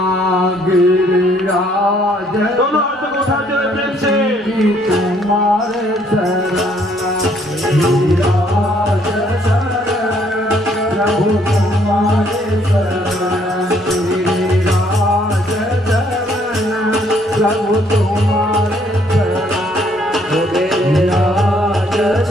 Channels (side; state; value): both; normal; correlation 0.65